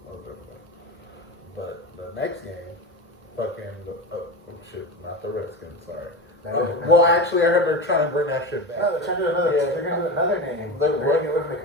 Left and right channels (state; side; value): normal; both; correlation 0.23